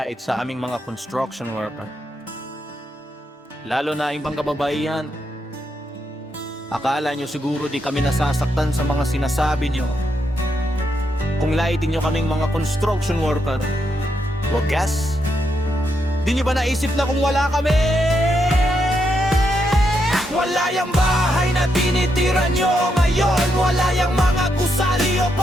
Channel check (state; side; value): normal; both; correlation 0.81